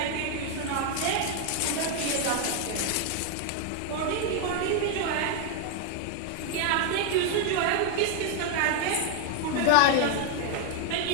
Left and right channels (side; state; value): both; different; correlation 0.00